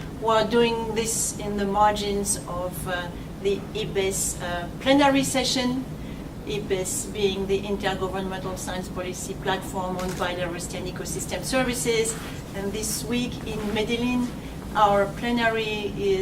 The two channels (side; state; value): both; identical; correlation 1.00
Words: We are doing this in the margins of the IPBES plenary session, IPBES being the Intergovernmental Science Policy Platform on Biodiversity and Ecosystem Services. And this week in Medellin, our plenary